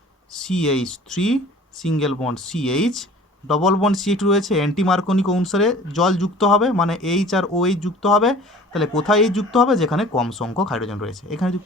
CH3 single bond CH double bond CH রয়েছে, অ্যান্টি মার্কোনিক অনুসারে জল যুক্ত হবে, মানে এইচ আর ওএইচ যুক্ত হবে। তাহলে কোথায় এইচ যুক্ত হবে? যেখানে কম সংখ্যক হাইড্রোজেন রয়েছে, এখানে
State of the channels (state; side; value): normal; both; correlation 0.46